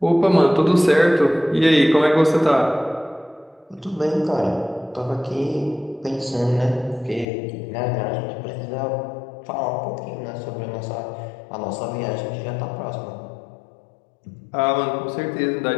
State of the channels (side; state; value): right; drops out; at 7.2 s